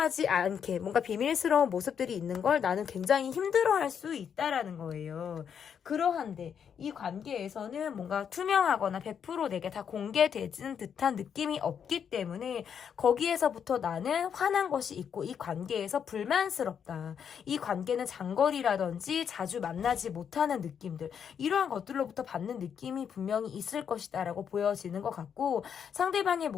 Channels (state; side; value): quieter; right; 7.7 dB